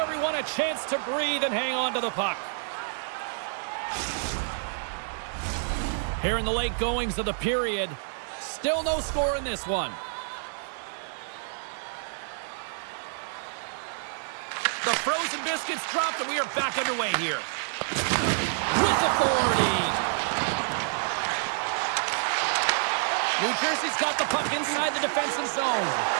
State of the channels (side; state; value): left; silent; digital silence